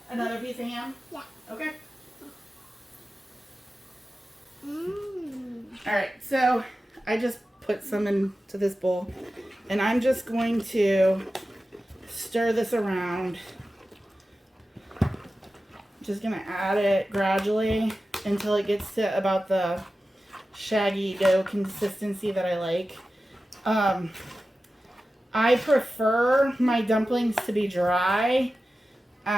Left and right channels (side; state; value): both; normal; correlation 0.94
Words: Another piece of ham? Yeah. Okay. Mmm. Alright, so I just put some into this bowl, and I'm just going to stir this around. Just gonna add it gradually until it gets to about the shaggy dough consistency that I like. I prefer my dumplings to be dry